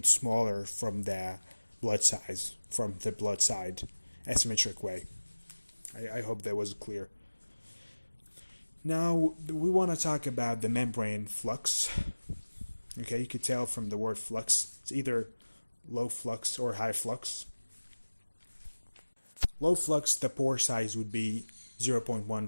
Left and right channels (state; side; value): inverted; both; correlation -1.00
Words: smaller from the blood size, from the blood side, asymmetric way. I hope that was clear. Now we want to talk about the membrane flux. Okay, you could tell from the word flux, it's either low flux or high flux. Low flux, the pore size would be